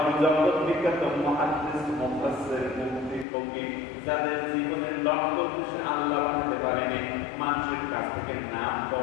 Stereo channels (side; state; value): right; drops out; at 3.2 s